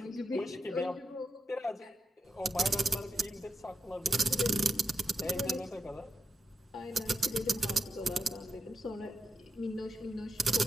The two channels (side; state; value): both; normal; correlation 0.87